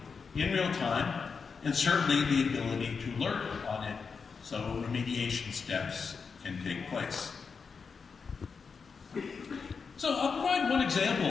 in real time, and certainly the ability to alert on it so remediation steps can take place. So I'll provide one example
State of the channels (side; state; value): right; quieter; 5.4 dB